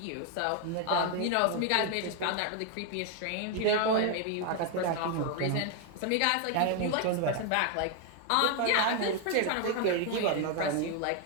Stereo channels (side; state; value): both; different; correlation 0.01